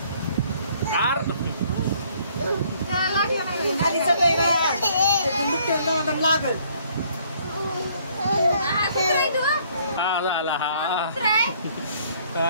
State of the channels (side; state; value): both; inverted; correlation -0.63